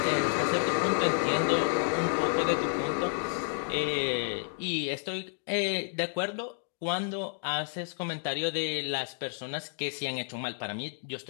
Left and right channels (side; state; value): right; silent; digital silence